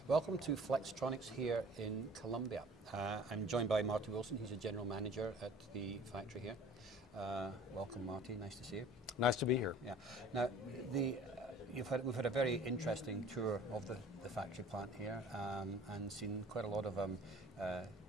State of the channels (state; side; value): normal; both; correlation 0.48